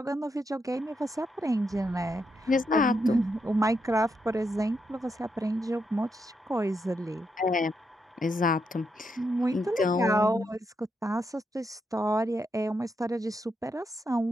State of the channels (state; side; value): normal; both; correlation 0.82